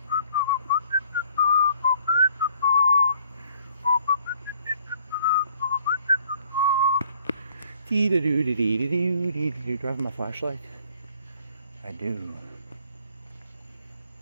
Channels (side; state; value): both; inverted; correlation -0.61